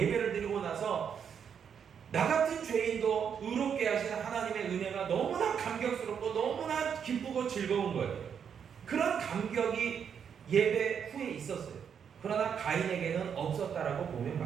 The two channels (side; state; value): left; quieter; 7.5 dB